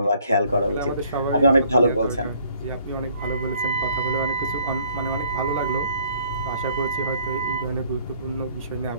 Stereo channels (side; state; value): both; inverted; correlation -0.61